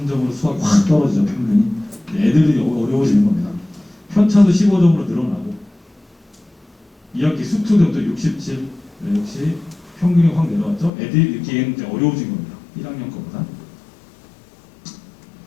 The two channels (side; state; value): right; drops out; at 10.9 s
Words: 수학이 확 떨어지죠. 평균이. 애들이 어려워지는 겁니다. 편차도 15점으로 늘어나고 2학기 수투도 67. 역시 평균이 확 내려왔죠. 애들이 느끼기에는 이제 어려워진 겁니다. 1학년 거보다.